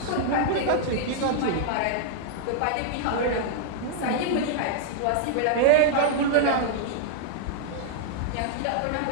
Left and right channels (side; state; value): both; different; correlation -0.01